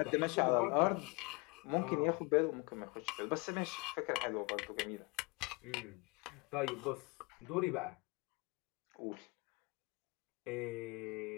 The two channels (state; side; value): quieter; right; 28.0 dB